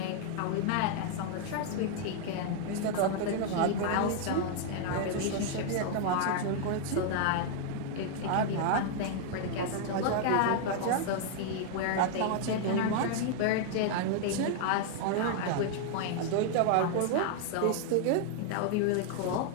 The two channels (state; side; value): different; both; correlation 0.00